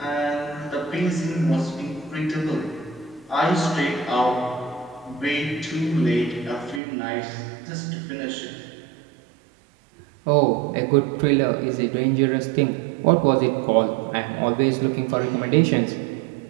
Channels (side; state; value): left; drops out; at 6.8 s